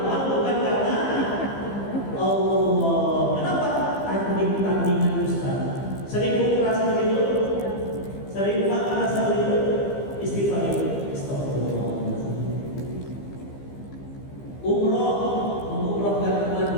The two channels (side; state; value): right; late; 15 ms